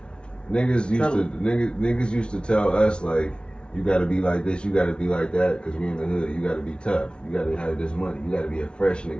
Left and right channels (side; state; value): right; late; 0.056 ms